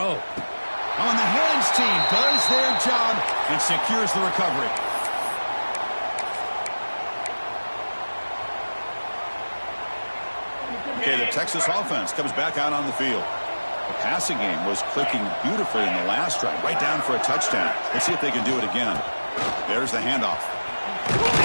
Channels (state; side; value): inverted; both; correlation -1.00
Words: On the hands team does their job and secures the recovery. Okay, the Texas offense comes back out on the field. The passing game was clicking beautifully in the last drive, right down for a touchdown. Let's see if they can do it again. There's the handoff.